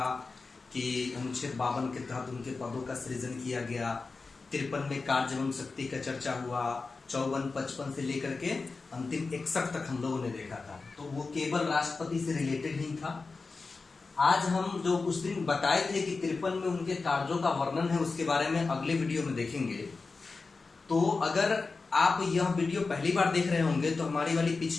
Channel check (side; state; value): right; quieter; 4.1 dB